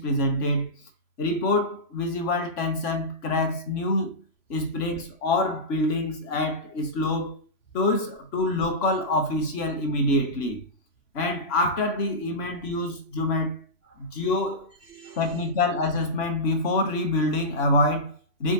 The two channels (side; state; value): right; late; 3.6 ms